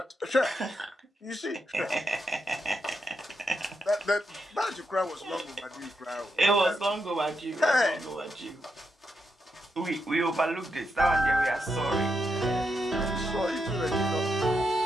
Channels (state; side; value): normal; both; correlation 0.83